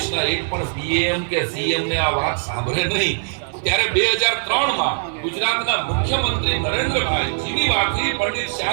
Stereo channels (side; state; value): left; silent; digital silence